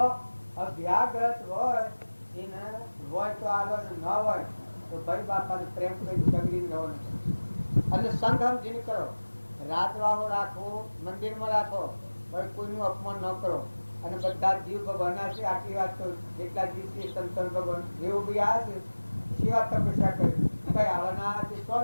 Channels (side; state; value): both; inverted; correlation -1.00